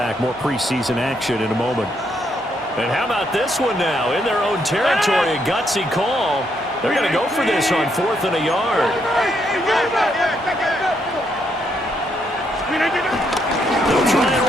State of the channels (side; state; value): both; normal; correlation 0.75